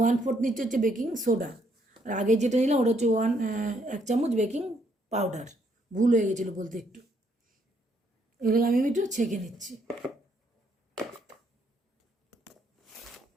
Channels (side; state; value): both; normal; correlation 0.71